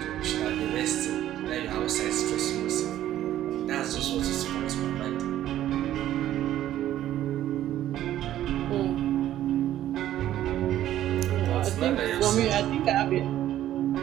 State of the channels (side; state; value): left; quieter; 12.6 dB